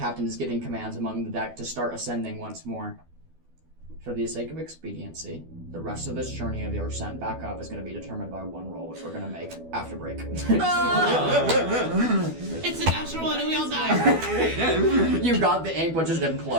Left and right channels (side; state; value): left; late; 12 ms